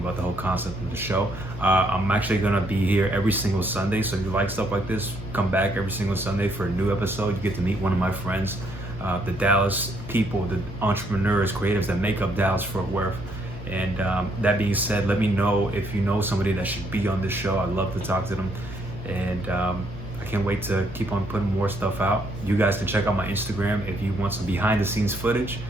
the whole concept of the show. I'm actually gonna be here every single Sunday, so if you like stuff like this, come back every single Sunday for a new episode. You get to meet one of my friends, the Dallas people, the entrepreneurs, creatives that make up Dallas Fort Worth. And that being said, let me know if you know somebody that should be on this show. I'd love to talk to them. And I can't wait to keep on putting more stuff out. You guys can check out my Instagram if you want some behind the scenes footage.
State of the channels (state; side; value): normal; both; correlation 0.71